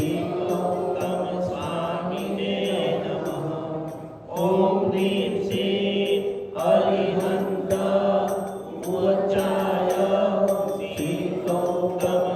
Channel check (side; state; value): both; identical; correlation 1.00